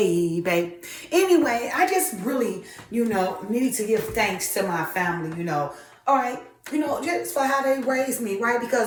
Anyway, I just really, need to give thanks to my family, All right. Just for how they raised me, right?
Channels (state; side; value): identical; both; correlation 1.00